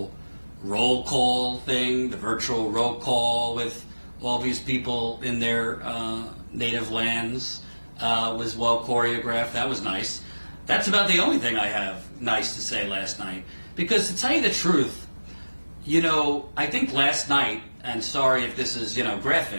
roll call thing, the virtual roll call with all these people in their native lands was well choreographed. That was nice. That's about the only thing I have nice to say last night. Because to tell you the truth, I think last night, and sorry if this is,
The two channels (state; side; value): inverted; both; correlation -1.00